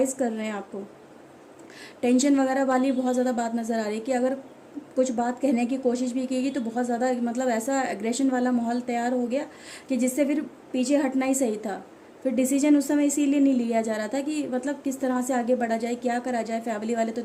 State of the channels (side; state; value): both; identical; correlation 1.00